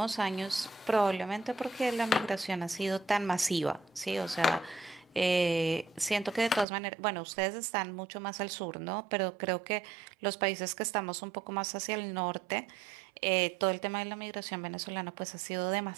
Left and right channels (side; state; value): left; drops out; at 6.7 s